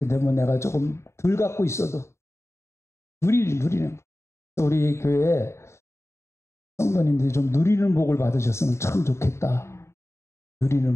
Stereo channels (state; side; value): late; right; 0.13 ms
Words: 뭐 내가 조금 덜 갖고 있어도 누리는 우리 교회 성도님들이 좀 누리는 복을 받으셨으면 참 좋겠다.